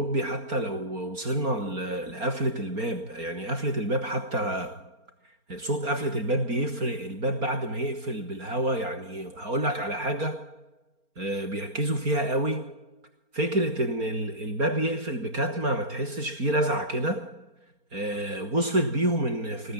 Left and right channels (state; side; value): late; left; 4.3 ms